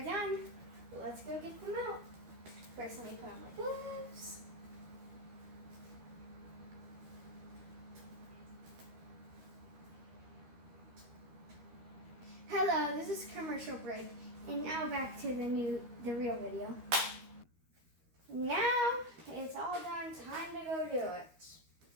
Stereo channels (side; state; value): left; late; 13 ms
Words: done. Let's go get them out. First, let me put on my gloves. Hello, this is commercial break, and now back to the real video. Now it's all done, time to go do it.